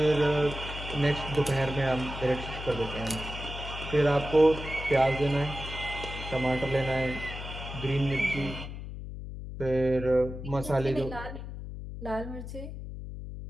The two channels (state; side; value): noise; left; hum, 9 dB below the sound